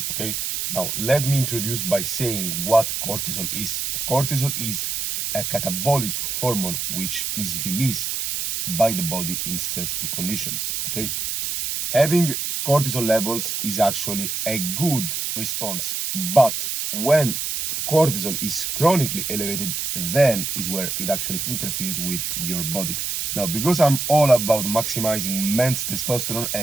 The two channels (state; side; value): noise; right; hiss, 2 dB below the sound